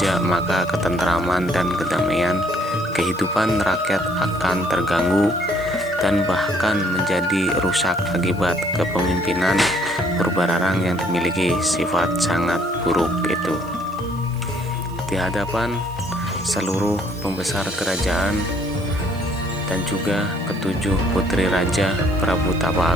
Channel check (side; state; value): right; noise; hiss, 24 dB below the sound